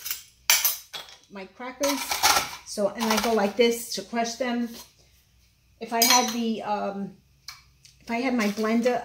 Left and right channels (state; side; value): identical; both; correlation 1.00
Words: my crackers. So, and I go like this to crush them. If I had the, if I had my blender,